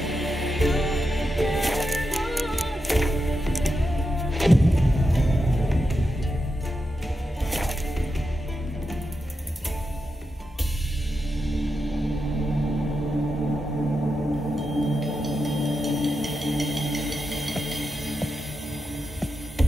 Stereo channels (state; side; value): normal; both; correlation 0.88